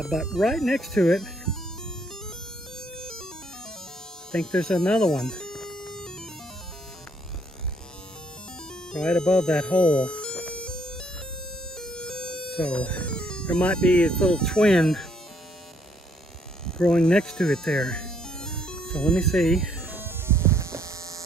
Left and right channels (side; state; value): both; normal; correlation 0.68